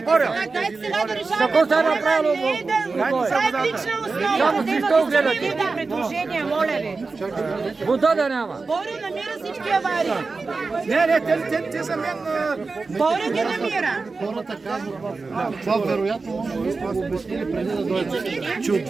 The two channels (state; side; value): quieter; left; 4.1 dB